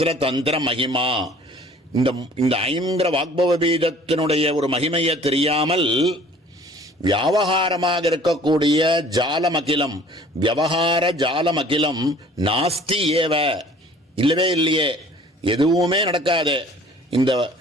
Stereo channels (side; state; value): both; normal; correlation 0.51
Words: தந்திர மகிமா. இந்த ஐங்கிற வாக்பவ பீஜத்தினுடைய ஒரு மகிமையை தெரியாமல் வியாவகாரமாக இருக்கக்கூடிய ஜாலமகிலம், விவகார ஜாலமகிலம் நாஸ்தி ஏவ, இல்லவே இல்லையே, எதுவுமே நடக்காது. இந்த